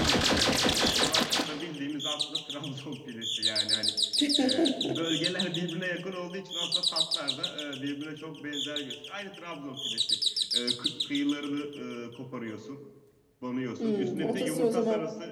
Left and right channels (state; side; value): identical; both; correlation 1.00